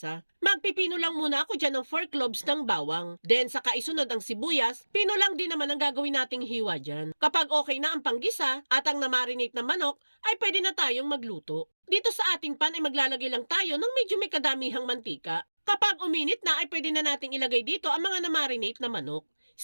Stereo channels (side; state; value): both; inverted; correlation -1.00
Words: Magpipino lang muna ako dyan ng 4 cloves ng bawang. Then saka isunod ang sibuyas, pino lang din naman ang gagawin nating hiwa dyan. Kapag okay na ang panggisa at ang namarinate na manok, ay pwede na tayong magluto. Dito sa ating pan ay maglalagay lang tayo ng medyo may kadamihang mantika. Kapag uminit na ay pwede na nating ilagay dito ang mga namarinate na manok.